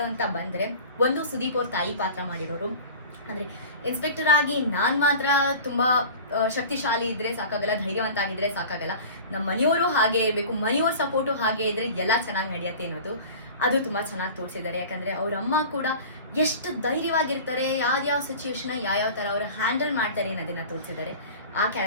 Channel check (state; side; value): inverted; both; correlation -0.38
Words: ಅಂತ ಬಂದ್ರೆ, ಒಂದು ಸುದೀಪ್ ಅವ್ರ ತಾಯಿ ಪಾತ್ರ ಮಾಡಿರೋರು. ಅಂದ್ರೆ ಇನ್ಸ್ಪೆಕ್ಟರ್ ಆಗಿ ನಾನ್ ಮಾತ್ರ ತುಂಬಾ ಶಕ್ತಿಶಾಲಿ ಇದ್ರೆ ಸಾಕಾಗಲ್ಲ, ಧೈರ್ಯವಂತ ಆಗಿದ್ರೆ ಸಾಕಾಗಲ್ಲ, ನಮ್ಮ ಮನೆಯವರು ಹಾಗೆ ಇರಬೇಕು, ಮನೆಯವ್ರ ಸಪೋರ್ಟು ಹಾಗೆ ಇದ್ರೆ ಎಲ್ಲ ಚೆನ್ನಾಗಿ ನಡೆಯುತ್ತೆ ಅನ್ನೋದು ಅದು ತುಂಬಾ ಚೆನ್ನಾಗಿ ತೋರಿಸಿದ್ದಾರೆ. ಯಾಕಂದ್ರೆ ಅವ್ರ ಅಮ್ಮ ಕೂಡ ಎಷ್ಟು ಧೈರ್ಯವಾಗಿರ್ತಾರೆ, ಯಾವ್ಯಾವ ಸಿಚುವೇಶನ್ ಯಾವ ತರ ಅವ್ರು ಹ್ಯಾಂಡಲ್ ಮಾಡ್ತಾರೆ ಅನ್ನೋದನ್ನ ತೋರಿಸಿದ್ದಾರೆ. ಆ